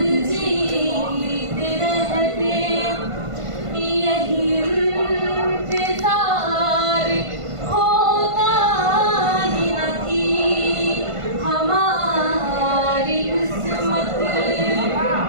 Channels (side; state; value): left; late; 1.5 ms